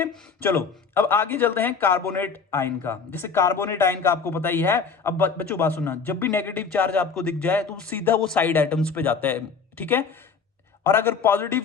चलो अब आगे चलते हैं कार्बोनेट आयन का। जैसे कार्बोनेट आयन का आपको पता ही है। अब बच्चों बात सुनना, जब भी नेगेटिव चार्ज आपको दिख जाए तो सीधा वो साइड एटम्स पे जाता है, ठीक है, और अगर पॉजिटिव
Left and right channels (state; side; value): quieter; right; 5.5 dB